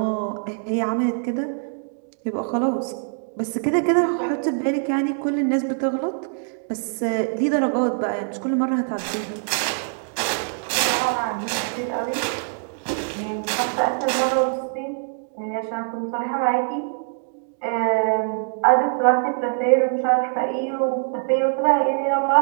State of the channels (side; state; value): left; silent; digital silence